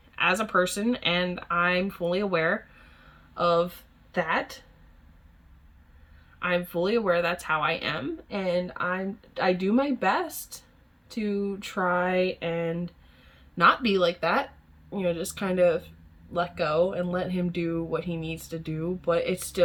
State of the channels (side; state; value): both; identical; correlation 1.00